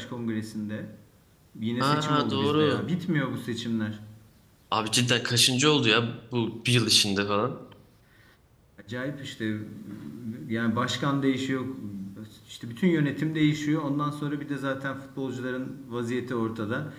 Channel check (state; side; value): identical; both; correlation 1.00